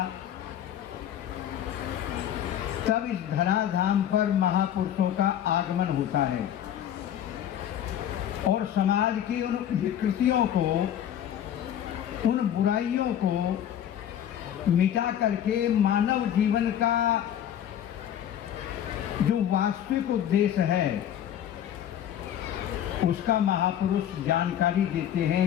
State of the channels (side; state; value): right; quieter; 10.3 dB